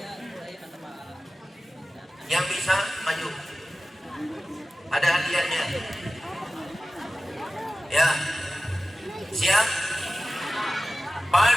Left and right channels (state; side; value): normal; both; correlation 0.95